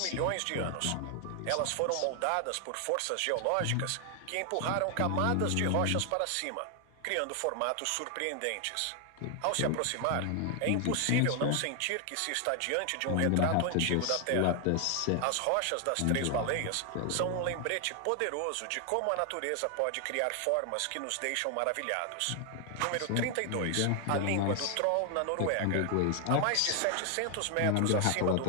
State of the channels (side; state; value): both; different; correlation 0.00